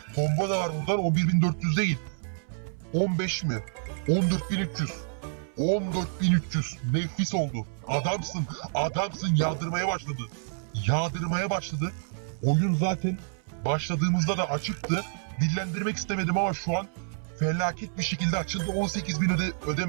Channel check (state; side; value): silent; left; 59 dB below the other